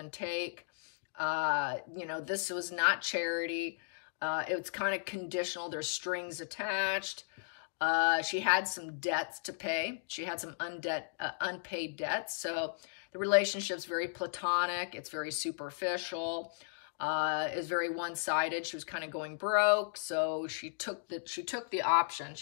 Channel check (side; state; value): right; silent; digital silence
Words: take. You know, this was not charity. It was kind of conditional. There's strings attached. She had some debts to pay. She had some unpaid debts. So the relationship's very platonic. It's very superficial. is very one-sided. She was kind of going broke, so she took the option.